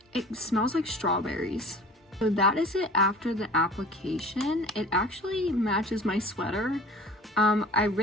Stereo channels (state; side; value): normal; both; correlation 0.43